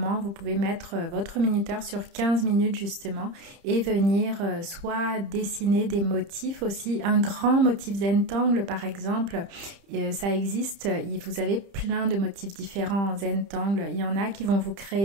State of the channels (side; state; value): left; late; 30 ms